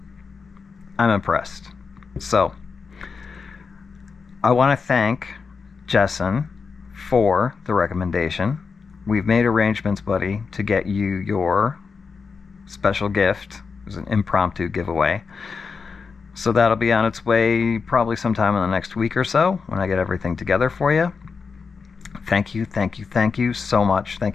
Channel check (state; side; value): quieter; right; 5.2 dB